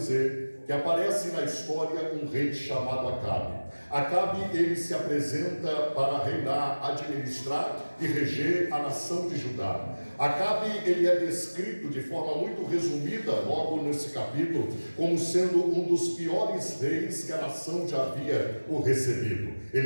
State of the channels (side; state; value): both; inverted; correlation -1.00